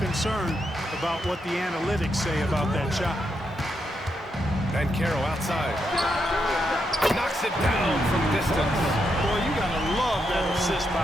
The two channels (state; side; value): normal; both; correlation 0.82